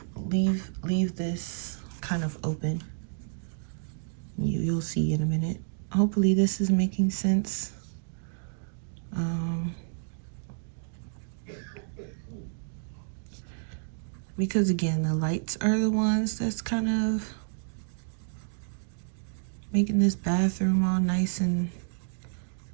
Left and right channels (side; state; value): left; silent; digital silence